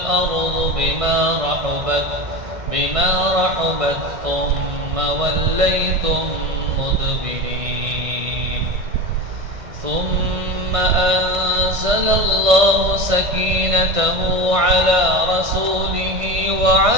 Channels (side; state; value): left; late; 1.6 ms